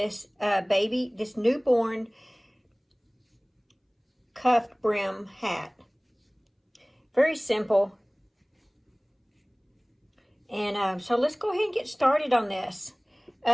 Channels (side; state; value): both; identical; correlation 1.00